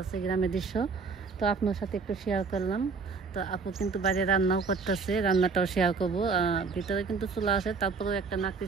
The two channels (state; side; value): quieter; left; 4.7 dB